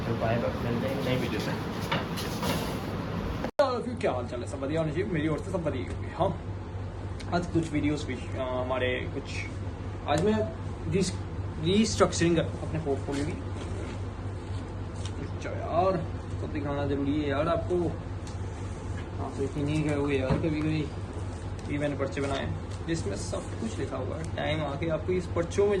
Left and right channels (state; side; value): identical; both; correlation 1.00